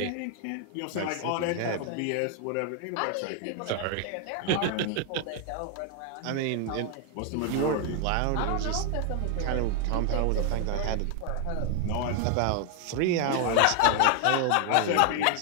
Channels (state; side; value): different; both; correlation 0.00